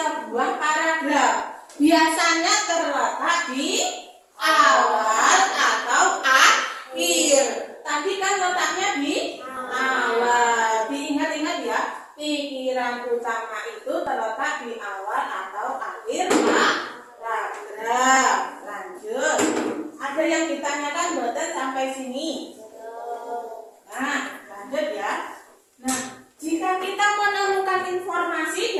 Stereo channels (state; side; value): identical; both; correlation 1.00